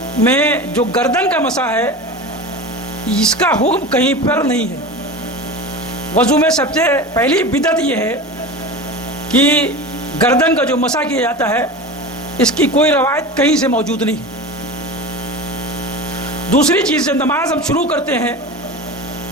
میں جو گردن کا مسح ہے اس کا حکم کہیں پر نہیں ہے۔ وضو میں سب سے پہلی بدعت یہ ہے کہ گردن کا جو مسح کیا جاتا ہے اس کی کوئی روایت کہیں سے موجود نہیں۔ دوسری چیز، جب نماز ہم شروع کرتے ہیں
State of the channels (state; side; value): normal; both; correlation 0.30